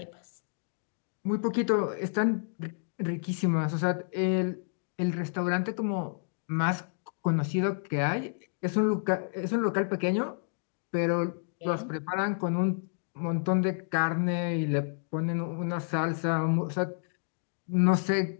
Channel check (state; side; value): silent; right; digital silence